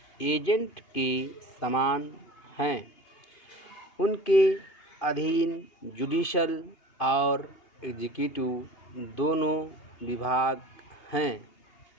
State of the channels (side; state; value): right; late; 2.5 ms